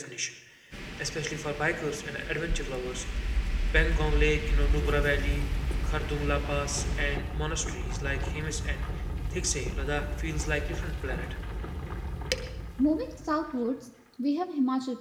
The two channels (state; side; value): identical; both; correlation 1.00